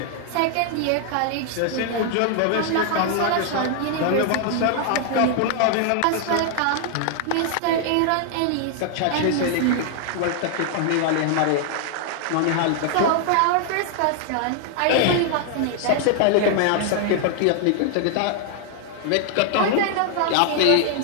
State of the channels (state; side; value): different; both; correlation 0.00